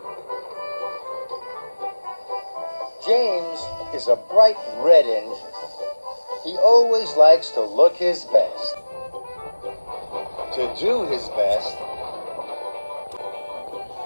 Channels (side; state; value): both; inverted; correlation -1.00